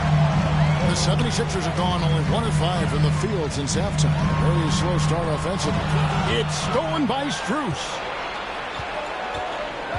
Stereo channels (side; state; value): both; identical; correlation 1.00